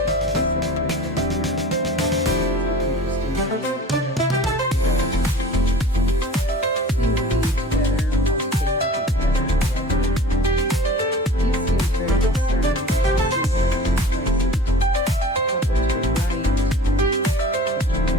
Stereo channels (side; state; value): both; normal; correlation 0.42